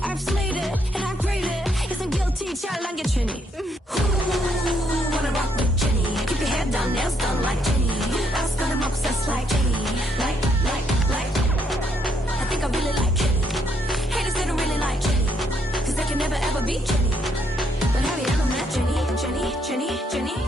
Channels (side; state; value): both; normal; correlation 0.73